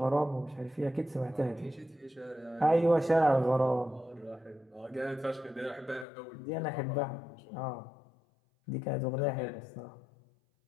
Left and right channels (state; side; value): drops out; right; at 6.1 s